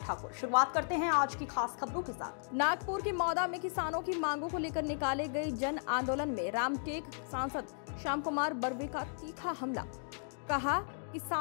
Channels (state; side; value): silent; right; digital silence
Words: शुरुआत करते हैं आज की खास खबरों के साथ। नागपुर के मौदा में किसानों की मांगों को लेकर निकाले गए जन आंदोलन में रामटेक सांसद श्याम कुमार बर्वे का तीखा हमला। कहा,